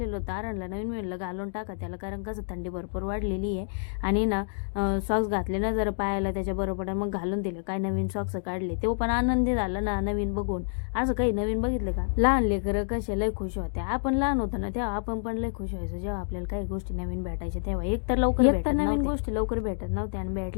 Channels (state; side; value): silent; right; digital silence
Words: होतं आरणला नवीन मिळलं घालून टाका त्याला. कारण कसं थंडी भरपूर वाढलेली आहे. आणि ना सॉक्स घातले ना जरा पायाला त्याच्या बरोबर मग घालून दिले. काय नवीन सॉक्स काढले तो पण आनंदी झाला ना नवीन बघून. असं काही नवीन बघितलं का. लहान लेकरं कसे लय खुश होते. आपण लहान होतो ना तेव्हा आपण पण लय खुश व्हायचो जेव्हा आपल्याला काही गोष्टी नवीन भेटायच्या तेव्हा. एक तर नवीन गोष्टी लवकर भेटत नव्हत्या आणि